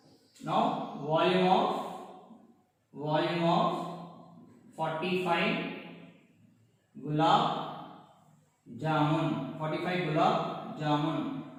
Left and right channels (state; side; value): identical; both; correlation 1.00